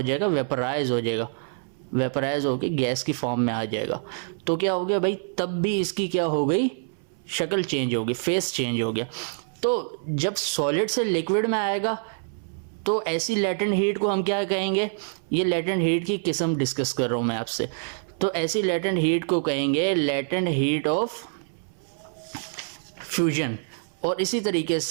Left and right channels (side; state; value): left; silent; 59 dB below the other